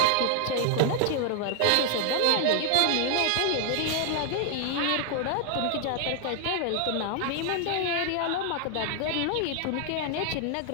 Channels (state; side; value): different; both; correlation 0.00